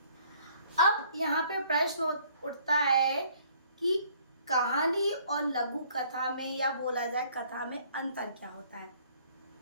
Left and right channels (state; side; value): inverted; both; correlation -0.60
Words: अब यहाँ पे प्रश्न उठता है कि कहानी और लघु कथा में, या बोला जाए कथा में, अंतर क्या होता है?